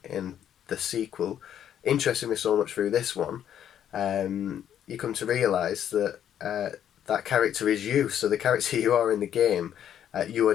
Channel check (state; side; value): quieter; right; 10.0 dB